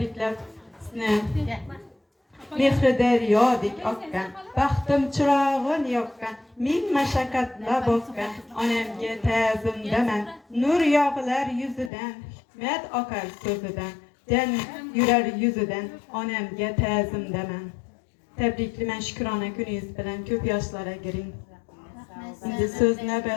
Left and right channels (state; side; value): drops out; right; at 11.9 s